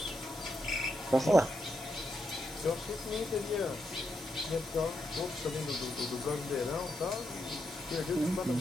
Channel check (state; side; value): normal; both; correlation 0.82